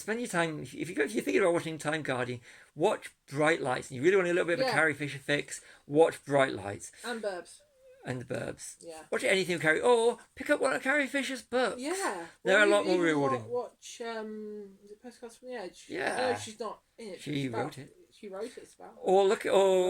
your time if you're thinking about watching Time Guardian, watch Bright Lights. And you really want a little bit of a Carrie Fisher fix, watch Bright Lights and Burbs. And the Burbs. Yeah. Watch anything with Carrie, or pick up one of Carrie Fisher's books. Yeah. They're a lot more rewarding. Watch is it Postcards from the Edge? Yeah. No, she's not in it. She wrote it. She wrote it. It's about. Or look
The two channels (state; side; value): identical; both; correlation 1.00